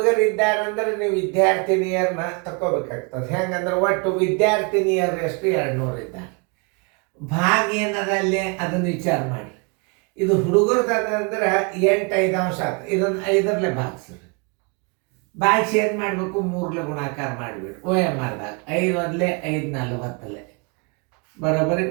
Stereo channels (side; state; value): left; quieter; 33.3 dB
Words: ನೀವು ವಿದ್ಯಾರ್ಥಿನಿಯರನ್ನ ತಗೋಬೇಕಾಗ್ತದೆ. ಹೆಂಗಂದ್ರೆ ಒಟ್ಟು ವಿದ್ಯಾರ್ಥಿನಿಯರು ಎಷ್ಟು? 200 ಇದ್ದಾರೆ. ಭಾಗ ಏನದಲ್ಲಿ ಅದನ್ನು ವಿಚಾರ ಮಾಡಿ. ಇದು ಹುಡುಗರದಂದ್ರೆ 8 5 ಆಯ್ತು. ಇದನ್ನು 5ರಲ್ಲೇ ಭಾಗಿಸ್ರಿ. ಭಾಗಿಸಿ ಏನು ಮಾಡಬೇಕು? 3 ಗುಣಾಕಾರ ಮಾಡಿಬಿಡಿ. OMRದಾಗ 5 1 5 40 ಬರೋಬ್ಬರಿ